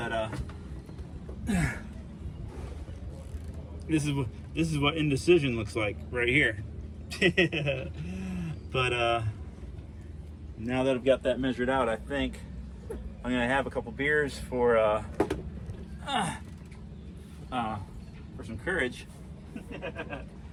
this is what indecision looks like right here. But now that I've got that measured out, I think I'm gonna have a couple beers for some courage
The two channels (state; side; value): identical; both; correlation 1.00